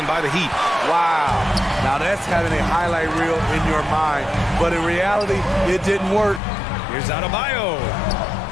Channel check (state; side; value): drops out; right; at 6.4 s